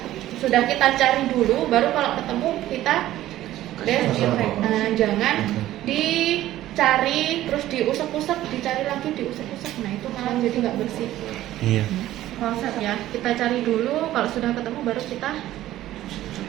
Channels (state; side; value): quieter; left; 14.2 dB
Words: Sudah kita cari dulu baru kalau ketemu kita desinfek. Nah, jangan dicari terus diusap-usap, dicari lagi diusap-usap. Nah, itu malah jadi nggak bersih. Iya. Proses ya, kita cari dulu, kalau sudah ketemu baru kita